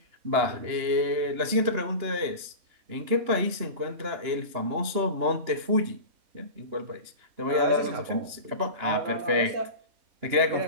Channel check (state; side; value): late; left; 2.9 ms